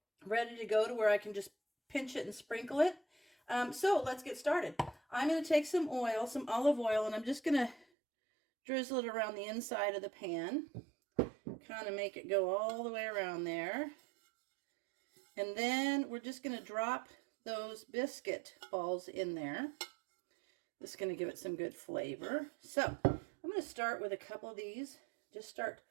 ready to go to where I can just pinch it and sprinkle it. So let's get started. I'm going to take some oil, some olive oil, and I'm just going to drizzle it around the inside of the pan. kind of make it go all the way around there. And then we're just going to drop those biscuit balls in there. This is going to give it some good flavor. So I'm going to start with a couple of these. Just start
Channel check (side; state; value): left; drops out; at 7.9 s